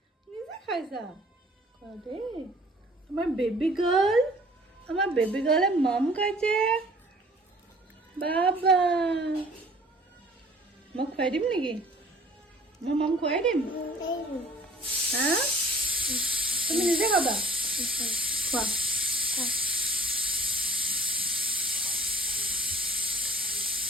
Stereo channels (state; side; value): normal; both; correlation 0.50